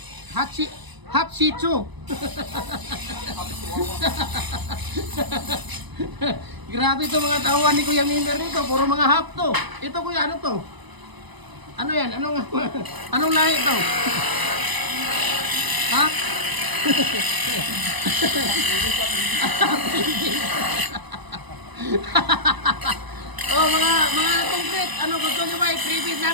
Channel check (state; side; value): late; left; 1.0 ms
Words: Shih Tzu. Grabe to mga tawan ni Kuya Mimer nito, puro mga half to. Ito kuya, ano to? Ano yan? Anong lahi to? Ha? Mga concrete, gusto nyo ba i-freebie